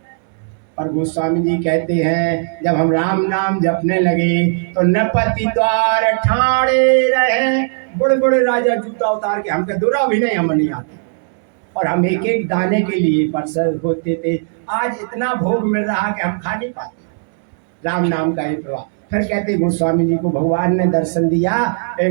पर गोस्वामी जी कहते हैं जब हम राम नाम जपने लगे तो नपति द्वार ठाणे रहे, बड़े बड़े राजा जूता उतार के, हमके दूरा भी नहीं, हम नहीं आते, और हम एक एक दाने के लिए परसर होते थे। आज इतना भोग मिल रहा कि हम खा नहीं पाते राम नाम का ये प्रभाव। फिर कहते गोस्वामी जी को भगवान ने दर्शन दिया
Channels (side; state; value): left; silent; digital silence